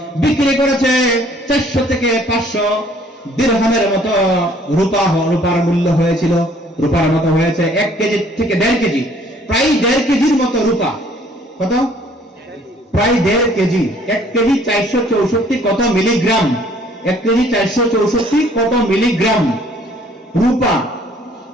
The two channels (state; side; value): normal; both; correlation 0.59